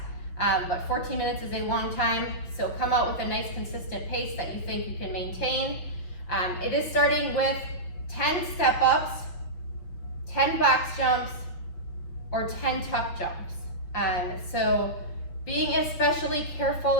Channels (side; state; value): right; late; 6.1 ms